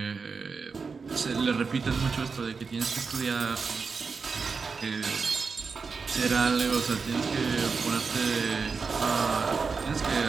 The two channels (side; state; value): left; quieter; 5.0 dB